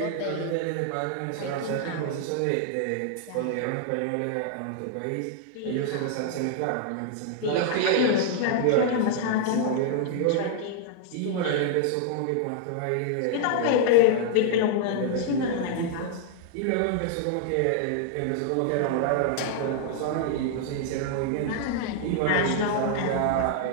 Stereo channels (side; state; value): both; different; correlation 0.00